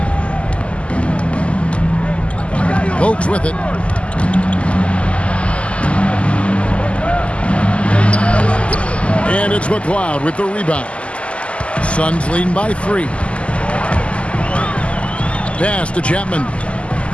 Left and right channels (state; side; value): late; right; 0.057 ms